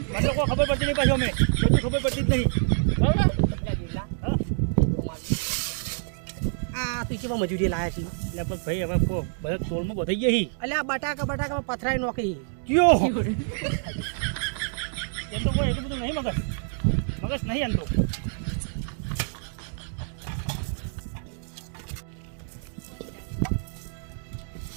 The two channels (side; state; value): left; silent; 60 dB below the other